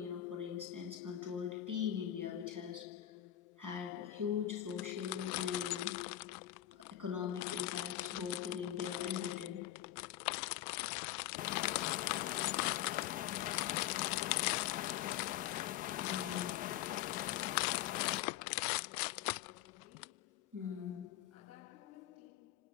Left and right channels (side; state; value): right; quieter; 13.0 dB